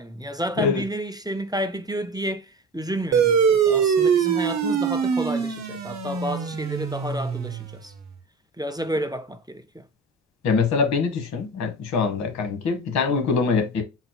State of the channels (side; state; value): both; normal; correlation 0.31